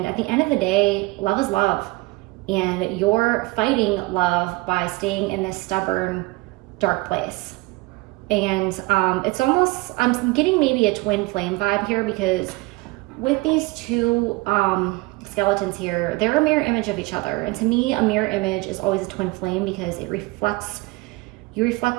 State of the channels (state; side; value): quieter; left; 23.2 dB